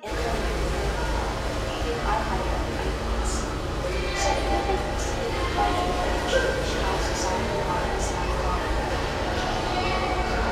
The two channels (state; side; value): identical; both; correlation 1.00